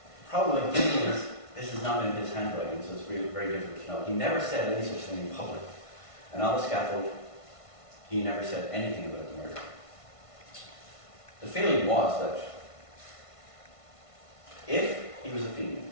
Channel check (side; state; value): right; late; 1.5 ms